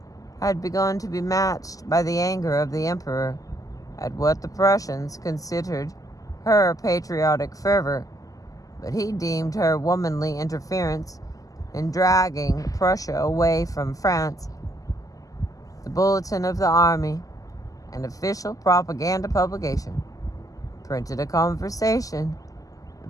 had begun to be matched by the anger of the Emperor at what the Prussians considered her patriotic fervor, but he deemed her womanly interference in dragging Prussia away from France. The Bulletin of the Army, an official propaganda publication, printed a conversation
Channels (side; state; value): right; late; 0.17 ms